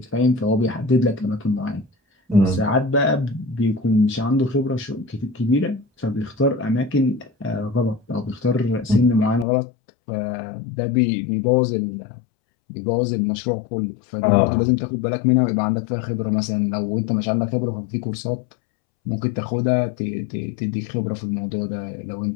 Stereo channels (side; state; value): right; drops out; at 9.5 s